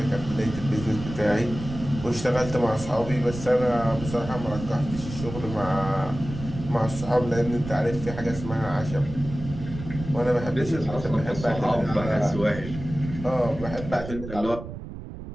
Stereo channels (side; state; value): right; noise; rumble, 10 dB below the sound